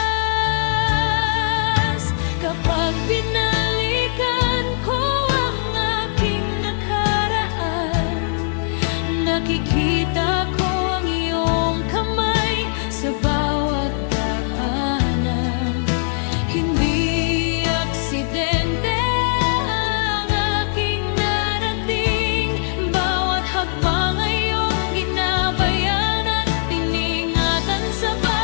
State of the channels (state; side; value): silent; right; 65 dB below the other